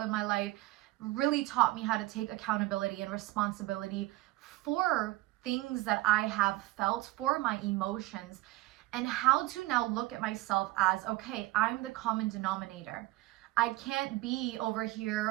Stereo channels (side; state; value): left; quieter; 18.9 dB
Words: my life really taught me how to take accountability and responsibility for things that I have felt, for my emotions, and how to now look at myself as, okay, I'm the common denominator. I can't be over